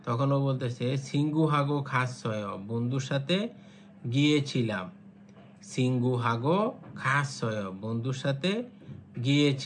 তখন ও বলতেছে সিঙ্গু হাগো খাস ছয় বন্ধুর সাথে গিয়েছিলাম, সিঙ্গু হাগো খাস ছয় বন্ধুর সাথে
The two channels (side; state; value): both; identical; correlation 1.00